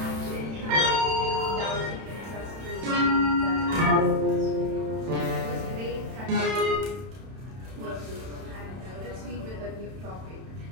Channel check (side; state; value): left; late; 31 ms